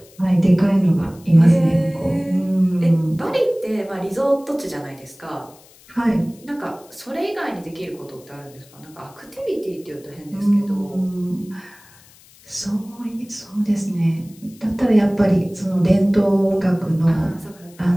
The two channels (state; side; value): noise; left; hiss, 26 dB below the sound